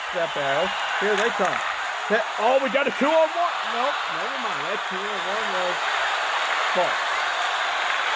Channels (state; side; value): identical; both; correlation 1.00